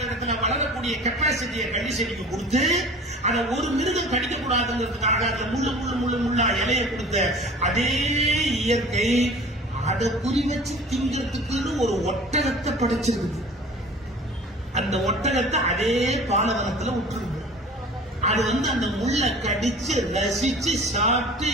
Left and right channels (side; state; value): both; normal; correlation 0.43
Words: இடத்துல வளரக்கூடிய கெப்பாசிட்டியை கள்ளி செடிக்கு கொடுத்து அதை ஒரு மிருகம் கடிக்க கூடாதுங்கிறதுக்காக அதுல முள்ளா இலைய கொடுத்த அதே இயற்கை அதை குறி வச்சு திங்கிறதுக்குன்னு ஒரு ஒட்டகத்தை படைச்சிருக்கு. அந்த ஒட்டகத்தை அதே பாலைவனத்துல விட்டுருக்கு. அது அந்த முள்ள கடிச்சு ரசிச்சு சாப்பிட்டு